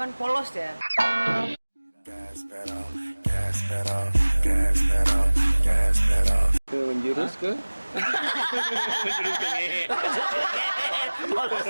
polos ya. Menjurus ke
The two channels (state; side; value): inverted; both; correlation -1.00